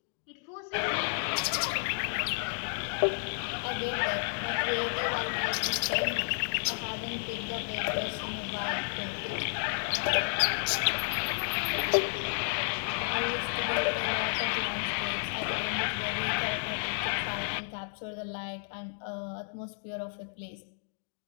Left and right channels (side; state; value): right; silent; digital silence